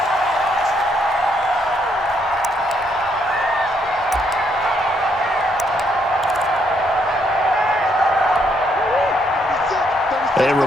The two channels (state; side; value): normal; both; correlation 0.73